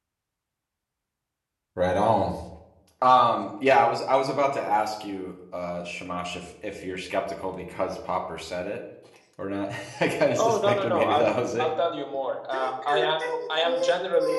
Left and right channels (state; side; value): identical; both; correlation 1.00